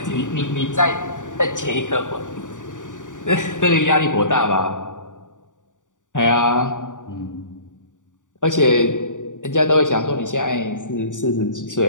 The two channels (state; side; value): late; right; 0.87 ms